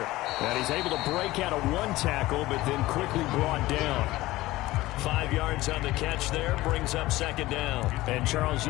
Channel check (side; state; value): right; quieter; 17.9 dB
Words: And he's able to break out of one tackle, but then quickly brought down. 5 yards on the catch there, brings up second down. And, Charles,